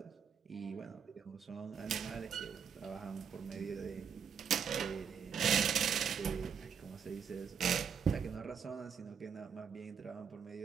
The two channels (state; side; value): quieter; left; 7.1 dB